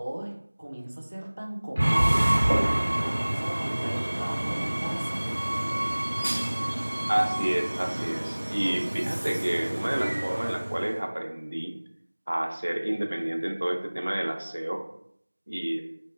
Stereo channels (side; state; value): both; inverted; correlation -1.00